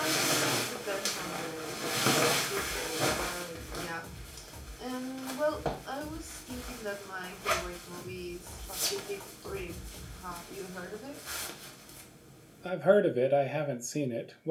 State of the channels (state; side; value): identical; both; correlation 1.00